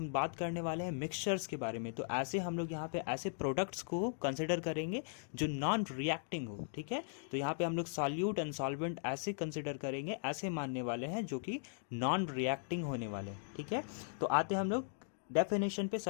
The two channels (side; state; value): right; silent; digital silence